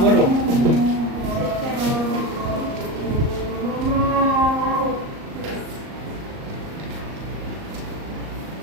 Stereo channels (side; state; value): left; late; 38 ms